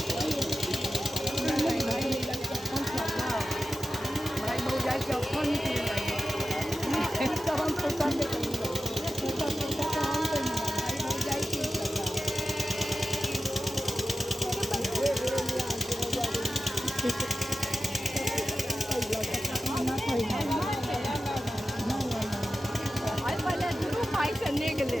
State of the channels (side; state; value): both; normal; correlation 0.93